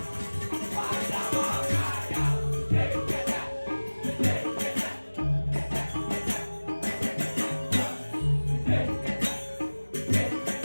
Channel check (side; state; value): both; inverted; correlation -1.00